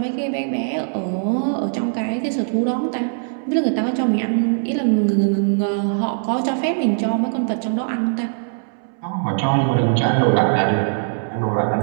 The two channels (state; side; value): silent; left; 65 dB below the other